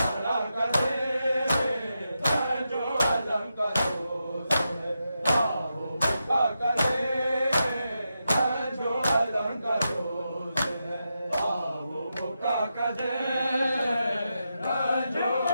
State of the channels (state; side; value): inverted; both; correlation -0.87